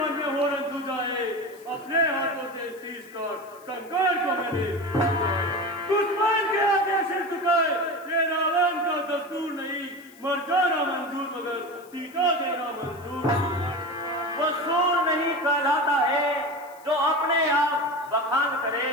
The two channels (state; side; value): noise; left; hiss, 25 dB below the sound